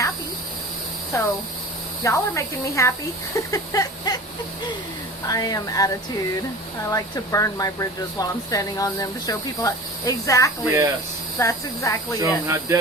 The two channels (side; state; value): both; normal; correlation 0.37